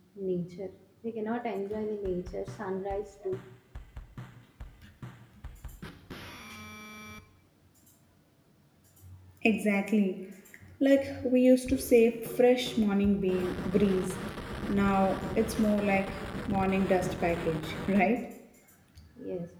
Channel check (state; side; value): identical; both; correlation 1.00